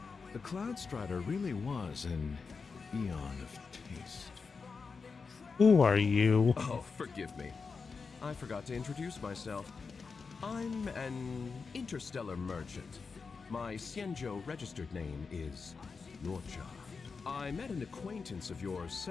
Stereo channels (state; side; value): quieter; right; 4.9 dB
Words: The Cloud Strider really was an eon of taste. Who are you? Oh, forgive me. I forgot to introduce myself. I'm an interstellar merchant. My Xianzhou registered name is Locha. I met an acquaintance of yours